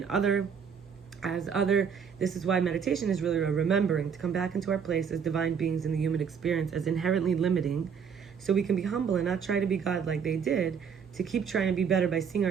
other as other. This is why meditation is really a remembering to come back into our place as divine beings in the human experience as inherently limiting, so we can be humble and not try to be God like they did, to keep trying to be better by seeing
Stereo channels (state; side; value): quieter; left; 6.9 dB